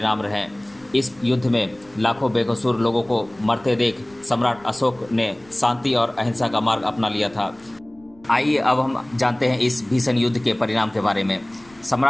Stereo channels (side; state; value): left; noise; rumble, 29 dB below the sound